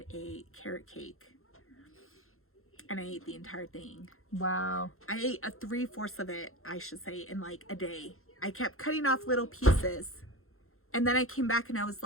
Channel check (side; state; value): right; late; 0.62 ms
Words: a carrot cake. And I ate the entire thing. Wow. I ate 3/4 of it, I should say, in like a day. I kept cutting off little pieces. And then I came back and I was